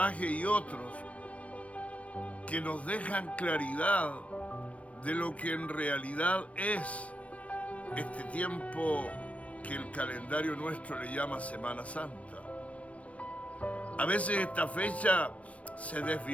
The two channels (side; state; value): right; late; 0.064 ms